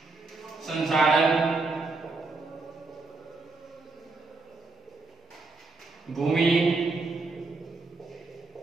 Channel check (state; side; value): quieter; left; 3.7 dB